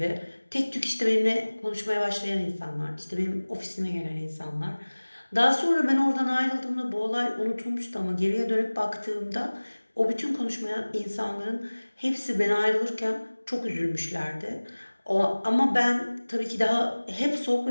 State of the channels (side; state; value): both; inverted; correlation -1.00